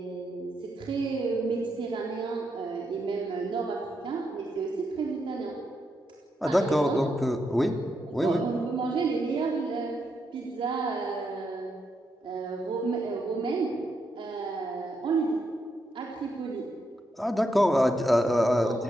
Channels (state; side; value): normal; both; correlation 0.81